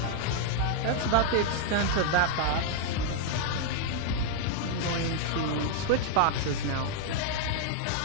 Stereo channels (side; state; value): both; different; correlation -0.01